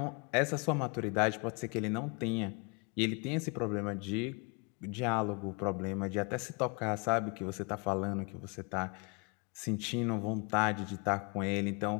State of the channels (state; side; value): quieter; right; 32.9 dB